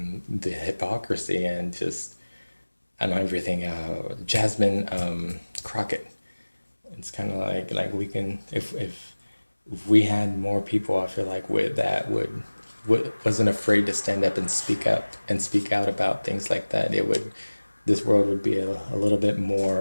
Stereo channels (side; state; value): both; inverted; correlation -1.00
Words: the hypocrisy and everything. Jasmine Crockett. It's kind of like we can, if we had more people, I feel like wasn't afraid to stand up and speak out about things like that, this world would be a little bit